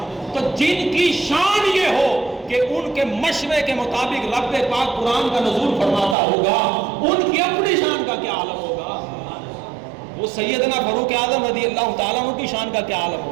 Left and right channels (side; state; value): left; drops out; at 6.2 s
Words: تو جن کی شان یہ ہو کہ ان کے مشورے کے مطابق رب پاک قرآن کا نزول فرماتا ہوگا, ان کی اپنی شان کا کیا عالم ہوگا؟ وہ سیدنا فاروق اعظم رضی اللہ تعالیٰ عنہ کی شان کا کیا عالم